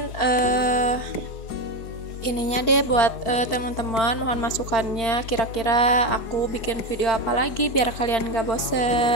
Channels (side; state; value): right; late; 4.4 ms